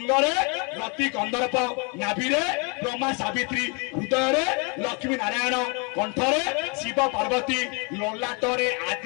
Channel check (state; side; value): quieter; right; 32.8 dB